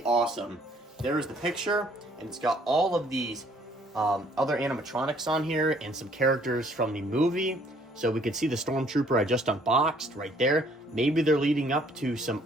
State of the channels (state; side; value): normal; both; correlation 0.61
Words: awesome. There is the picture, and it's got all of these other animatronics on here and some characters from the movie. So we can see the Stormtrooper I just unboxed right there. Maybe they're leading up to some